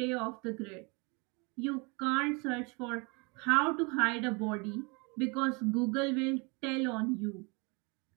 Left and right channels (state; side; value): quieter; left; 30.3 dB